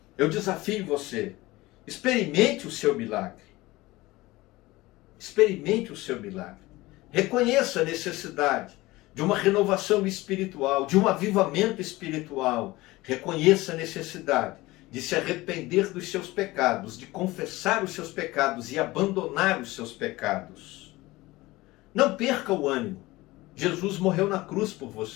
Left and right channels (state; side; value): quieter; right; 19.7 dB